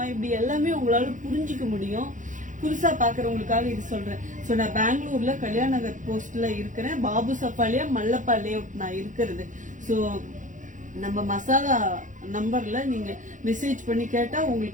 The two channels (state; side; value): late; left; 0.37 ms